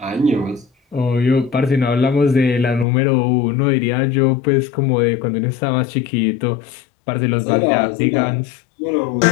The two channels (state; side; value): drops out; right; at 2.9 s